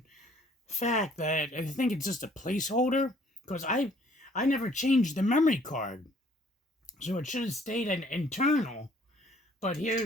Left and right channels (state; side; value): normal; both; correlation 0.60